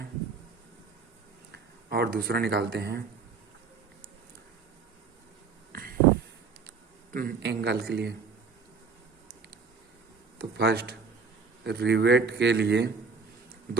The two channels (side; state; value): left; quieter; 5.0 dB